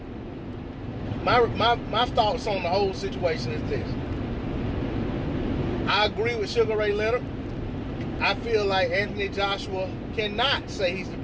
my thoughts on the whole situation is this. I agree with Sugar Ray Leonard. I feel like Anthony Joshua cannot say he's the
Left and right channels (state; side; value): identical; both; correlation 1.00